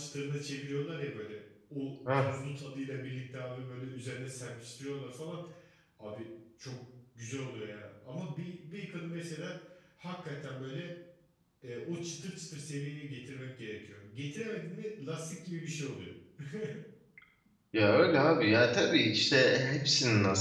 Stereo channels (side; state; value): both; identical; correlation 1.00